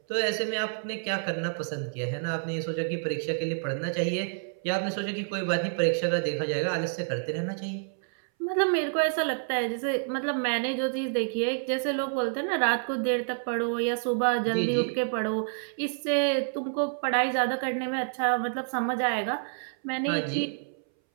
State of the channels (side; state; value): left; silent; 59 dB below the other